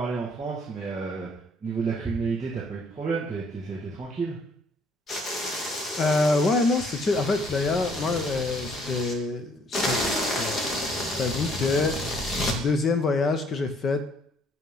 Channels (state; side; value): normal; both; correlation 0.64